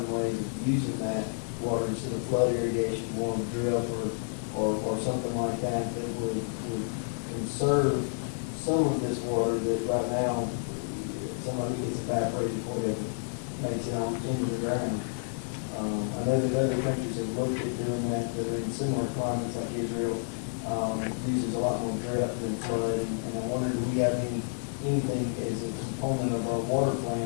ways of using that water instead of flood irrigation, more drip or something like that would conserve some of this water that right now somebody gets evaporated before it ever makes it on into the ground? I know that other countries have looked at doing that are in similar climates, like Israel uses a lot more drip than flood, and I wonder if we have anything as a component of our water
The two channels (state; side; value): silent; right; digital silence